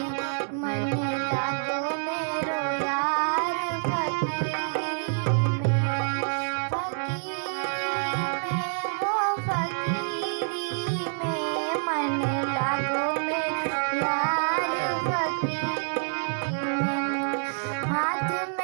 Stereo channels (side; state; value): left; silent; digital silence